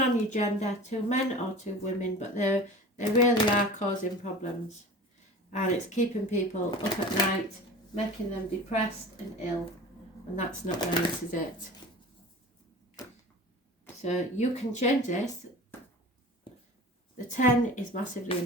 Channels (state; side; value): normal; both; correlation 0.37